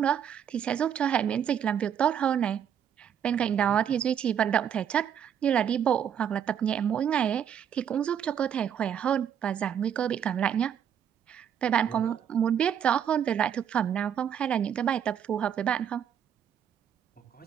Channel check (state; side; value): quieter; left; 8.8 dB